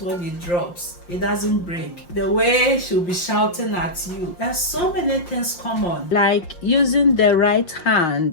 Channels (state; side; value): late; right; 5.7 ms